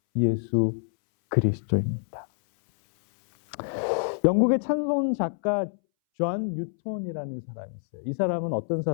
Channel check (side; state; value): right; silent; 61 dB below the other